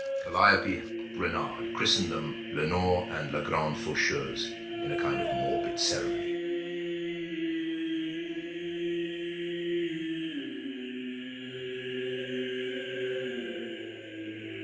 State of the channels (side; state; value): both; identical; correlation 1.00